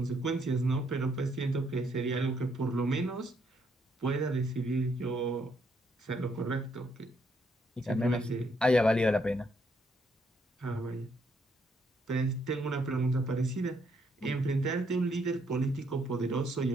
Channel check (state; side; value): normal; both; correlation 0.72